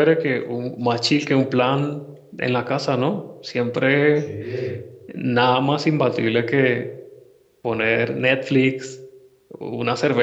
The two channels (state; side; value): identical; both; correlation 1.00